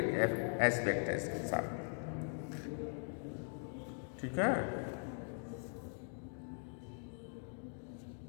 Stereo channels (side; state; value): right; silent; 50 dB below the other